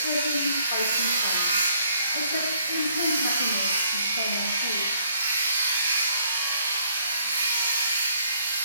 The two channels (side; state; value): both; inverted; correlation -0.65